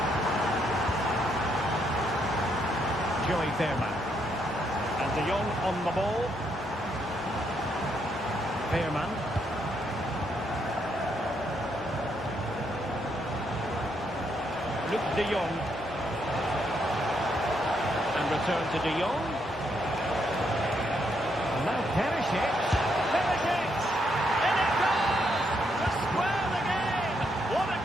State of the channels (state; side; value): normal; both; correlation 0.76